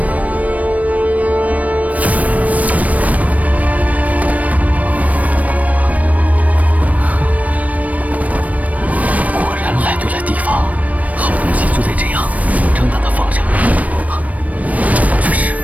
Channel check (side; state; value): left; late; 0.069 ms